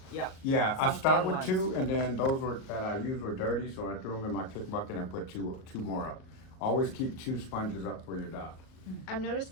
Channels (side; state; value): right; late; 38 ms